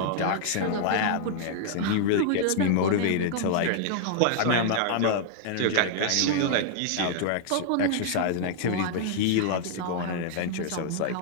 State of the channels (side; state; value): both; different; correlation -0.01